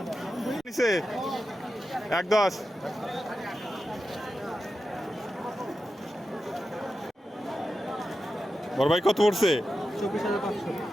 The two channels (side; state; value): both; normal; correlation 0.91